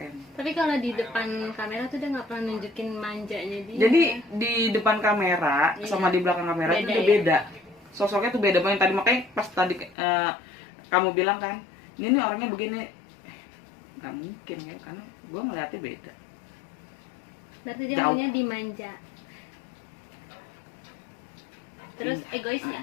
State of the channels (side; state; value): right; drops out; at 10.0 s